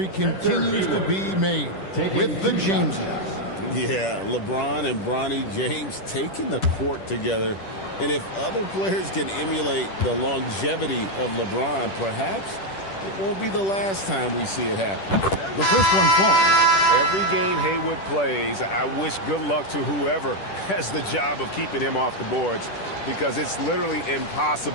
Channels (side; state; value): right; late; 10 ms